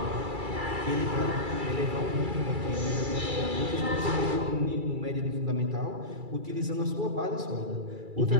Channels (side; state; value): left; late; 2.3 ms